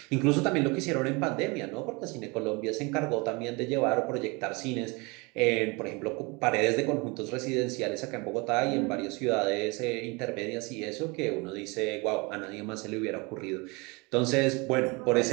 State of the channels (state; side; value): quieter; left; 27.8 dB